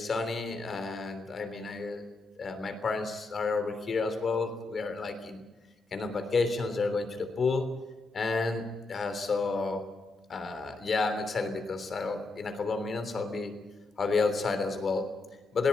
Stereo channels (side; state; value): right; quieter; 3.5 dB